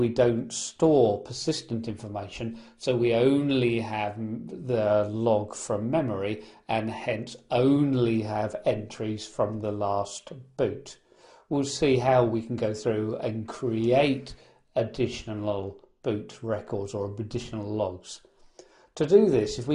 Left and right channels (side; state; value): both; identical; correlation 1.00